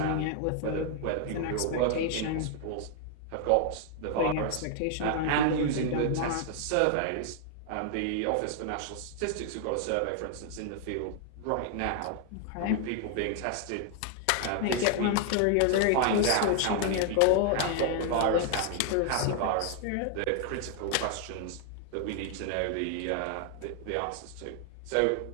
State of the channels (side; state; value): both; different; correlation 0.00